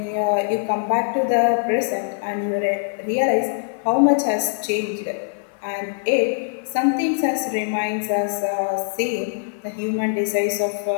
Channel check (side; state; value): right; silent; 55 dB below the other